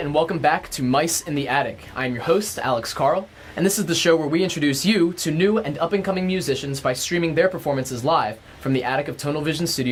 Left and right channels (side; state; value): both; identical; correlation 1.00